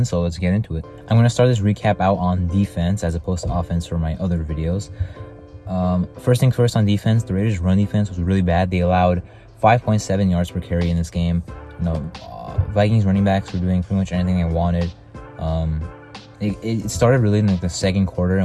So let's get into it. I'm gonna start this recap out on defense as opposed to offense for my other videos. First thing first, on defense, the Raiders' run defense was really bad. They allowed 5.7 yards per carry in this game. Vikings running backs were doing pretty much anything they wanted. It started really in the second quarter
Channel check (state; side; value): identical; both; correlation 1.00